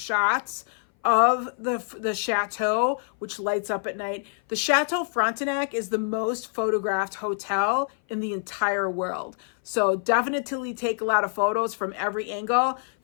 of the chateau, which lights up at night. The Chateau Frontenac is the most photographed hotel in the entire world. So definitely take a lot of photos from every angle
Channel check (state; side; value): silent; right; 58 dB below the other